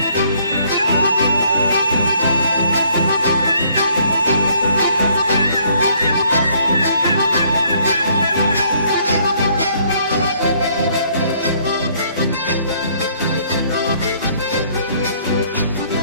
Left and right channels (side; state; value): both; inverted; correlation -0.65